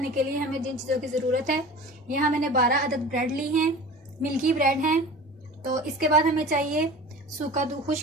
के लिए हमें जिन चीज़ों की ज़रूरत है, यहाँ मैंने 12 अदद ब्रेड ली हैं, मिल्की ब्रेड हैं। तो इसके बाद हमें चाहिए सूखा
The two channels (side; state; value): both; normal; correlation 0.38